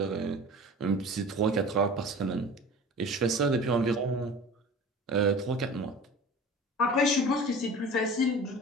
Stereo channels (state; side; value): normal; both; correlation 0.39